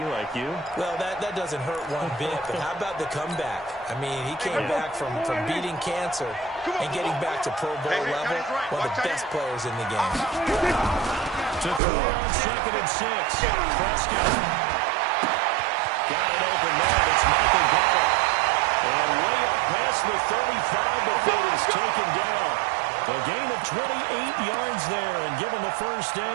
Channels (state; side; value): drops out; left; at 11.8 s